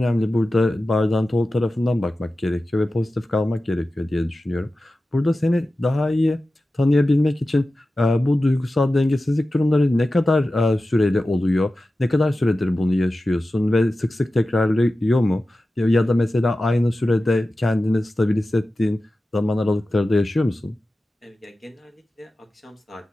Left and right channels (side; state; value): both; normal; correlation 0.94